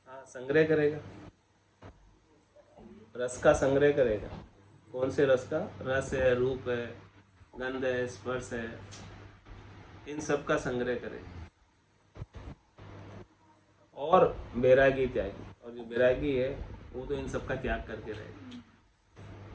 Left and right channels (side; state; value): both; identical; correlation 1.00